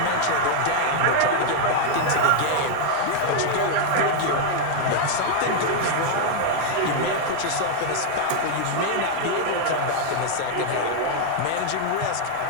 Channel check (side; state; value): both; different; correlation 0.00